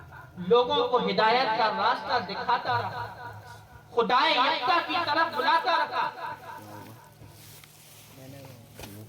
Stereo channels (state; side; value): identical; both; correlation 1.00